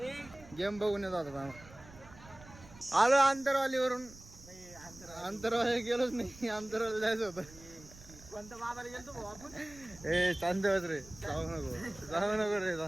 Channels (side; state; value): right; noise; rumble, 20 dB below the sound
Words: गेम बघून येत आता. आलो अंतरवालीवरून. अंतरवाली गेलोच नाही, अंतरवाली जायचं होतं. कोणत्या बाबाला गेलतो भाऊ आपण? ए शांत बस रे, जाऊ नको रे